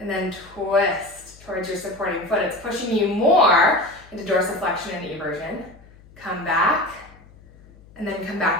then twist towards your supporting foot. It's pushing you more into dorsiflexion and eversion. Come back, and then come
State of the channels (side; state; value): left; noise; hum, 24 dB below the sound